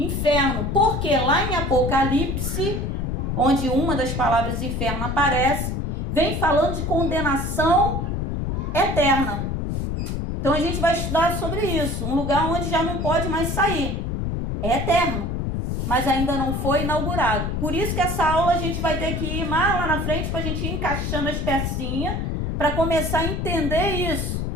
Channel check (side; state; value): left; noise; rumble, 1 dB below the sound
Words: porque lá em Apocalipse, onde uma das palavras inferno aparece, vem falando de condenação eterna. Então a gente vai estudar sobre isso, um lugar onde já não pode mais sair. É eterno, mas ainda não foi inaugurado. Por isso que essa aula a gente vai ter que ir mais lá na frente para a gente ir encaixando as pecinhas para começar a entender isso.